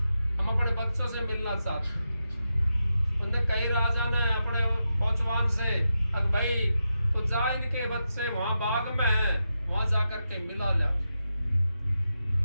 हम अपने बच्चों से मिलना चाहते हैं। उनने कई राजा ने अपने पौचवान से, अगर भाई तो जा, इनके बच्चे वहां बाग में हैं, वहां जाकर के मिला ला।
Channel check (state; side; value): inverted; both; correlation -0.88